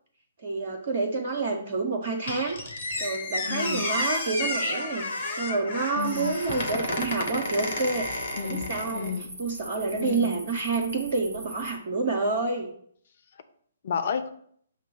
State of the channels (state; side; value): inverted; both; correlation -0.53